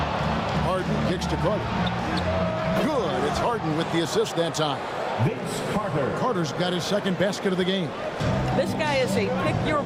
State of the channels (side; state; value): both; identical; correlation 1.00